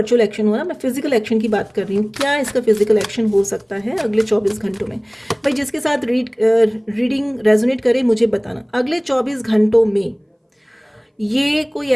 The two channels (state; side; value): identical; both; correlation 1.00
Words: एक्शन हो रहा है। मैं फिजिकल एक्शन की बात कर रही हूँ। क्या इसका फिजिकल एक्शन हो सकता है अगले 24 घंटों में। भाई जिसके साथ रीडिंग रेजोनेट करे मुझे बताना। अगले 24 घंटों में ये कोई